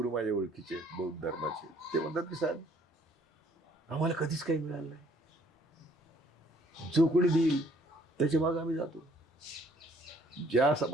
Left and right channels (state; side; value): normal; both; correlation 0.62